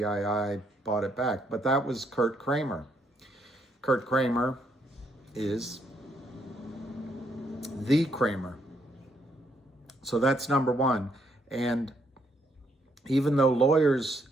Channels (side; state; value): both; normal; correlation 0.73